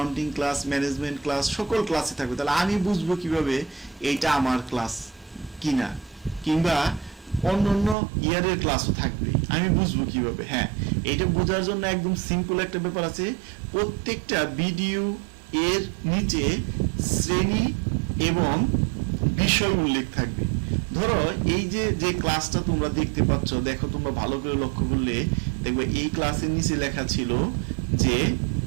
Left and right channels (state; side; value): drops out; left; at 8.0 s